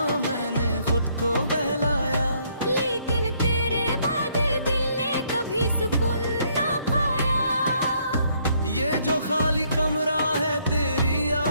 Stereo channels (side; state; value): both; inverted; correlation -0.68